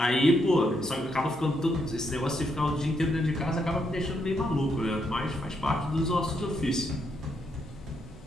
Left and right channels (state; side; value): normal; both; correlation 0.77